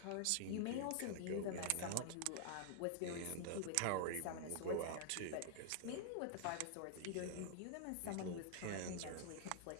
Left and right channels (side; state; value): both; different; correlation -0.01